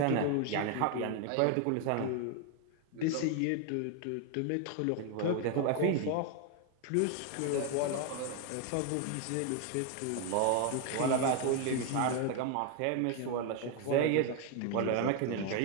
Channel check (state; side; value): different; both; correlation 0.01